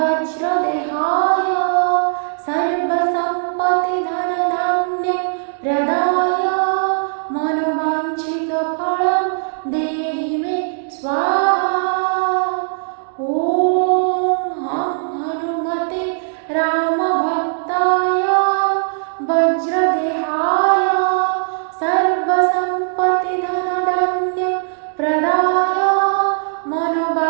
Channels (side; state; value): left; silent; digital silence